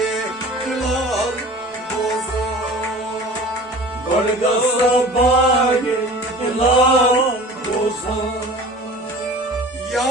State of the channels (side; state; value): both; normal; correlation 0.41